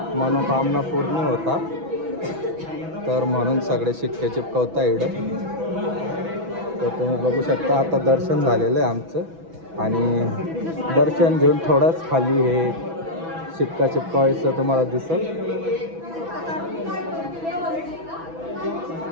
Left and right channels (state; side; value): late; left; 6.1 ms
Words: मनोकामना पूर्ण होतात. तर म्हणून सगळे शिक्के चिपकवता इकडं. तर तुम्ही बघू शकता आता दर्शन झालेलं आहे आमचं, आणि दर्शन घेऊन थोडंच खाली हे शिक्का चिपकावायचं तुम्हाला दिसेल.